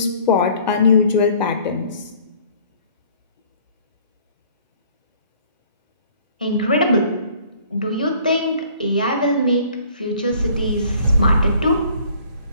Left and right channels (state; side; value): inverted; both; correlation -0.55